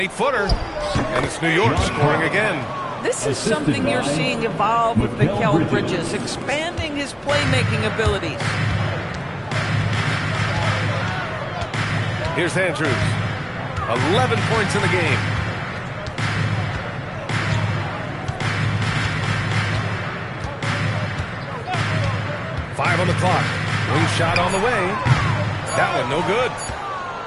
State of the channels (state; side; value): identical; both; correlation 1.00